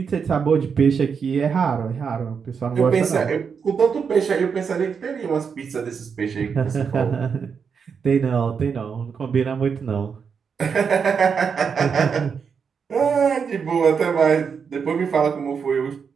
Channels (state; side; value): quieter; left; 6.3 dB